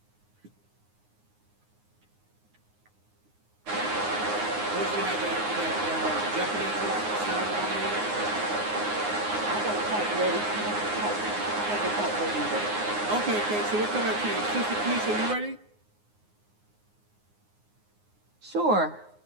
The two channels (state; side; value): late; left; 9.6 ms